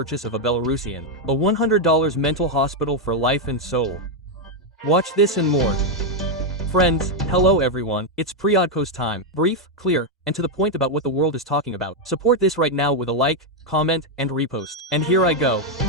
of a Belarusian. A $100 mental hospital for life and soul. Watch this and more. Friends, hello everyone, it's Priodko's time. Brief, clear, and to the point about what the world is talking about. Support this right now with a like, comment, and repost. And here I go.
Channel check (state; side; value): normal; both; correlation 0.02